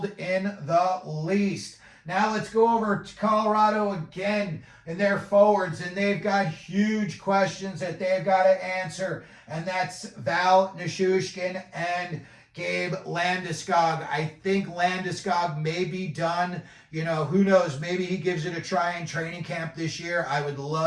in the least. Now let's go over to Colorado again and their forwards, and they've got huge questions that they've got to answer, and that's Val Nichushkin and Gabe Landeskog. I think Landeskog may be done. Who knows? Maybe he gives it a try in training camp this year. I would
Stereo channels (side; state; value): both; identical; correlation 1.00